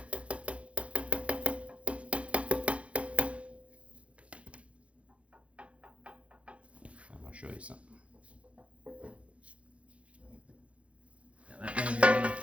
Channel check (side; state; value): left; late; 0.062 ms